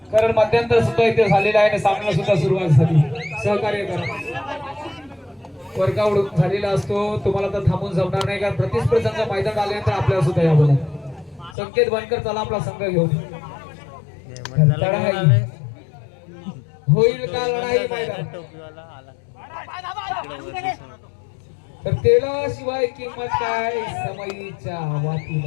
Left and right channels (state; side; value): drops out; right; at 11.6 s